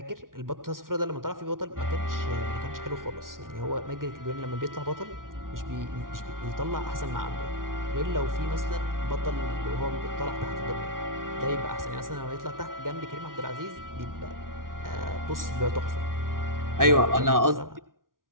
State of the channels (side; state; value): left; late; 0.90 ms